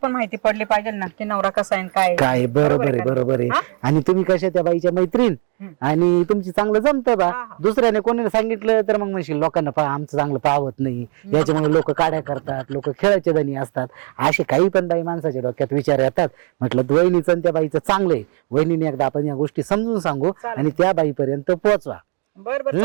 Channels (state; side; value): quieter; left; 31.2 dB